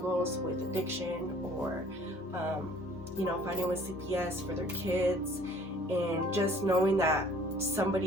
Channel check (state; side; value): normal; both; correlation 0.54